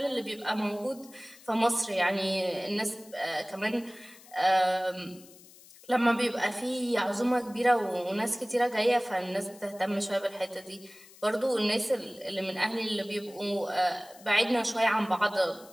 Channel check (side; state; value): left; noise; hiss, 22 dB below the sound